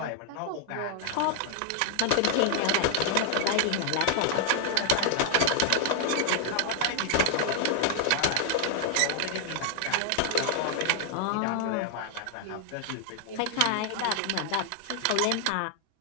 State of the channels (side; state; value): both; different; correlation 0.00